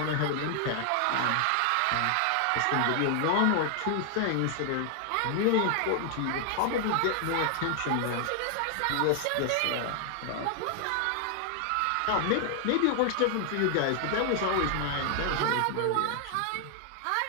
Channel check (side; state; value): both; different; correlation 0.00